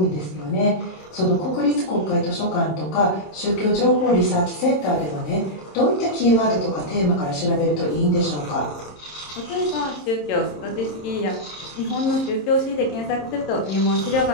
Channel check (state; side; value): late; right; 27 ms